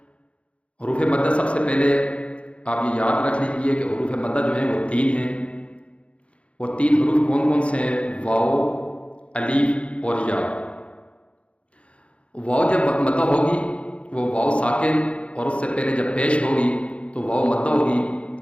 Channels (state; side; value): late; right; 0.061 ms